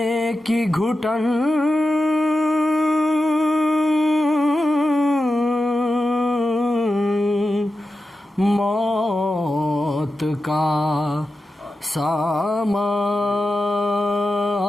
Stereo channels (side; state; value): both; normal; correlation 0.91